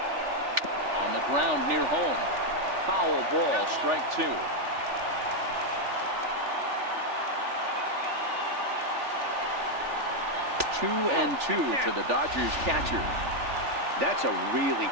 On the ground near home. Foul ball, strike 2. 2-2 to the Dodgers catcher. That's a really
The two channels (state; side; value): late; left; 3.4 ms